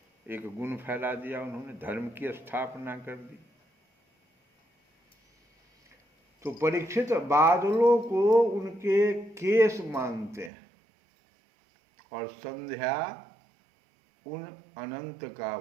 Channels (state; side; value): drops out; left; at 10.5 s